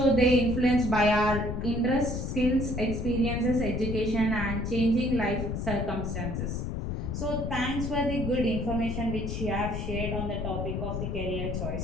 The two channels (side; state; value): left; noise; rumble, 3 dB below the sound